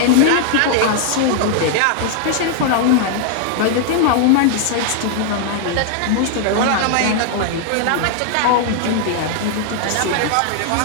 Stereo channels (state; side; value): different; both; correlation 0.00